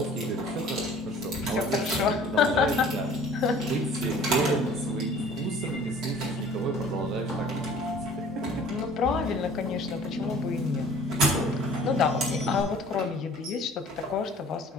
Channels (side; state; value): both; normal; correlation 0.49